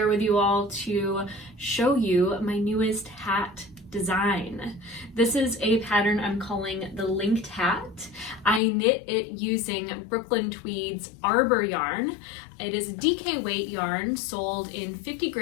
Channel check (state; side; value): drops out; right; at 8.6 s